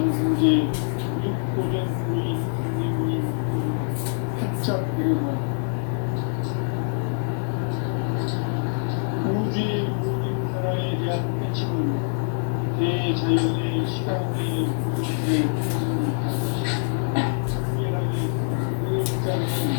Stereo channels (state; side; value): silent; right; digital silence